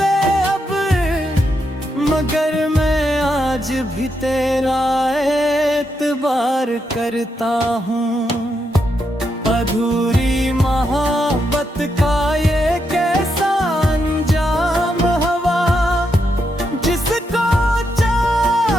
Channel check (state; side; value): normal; both; correlation 0.82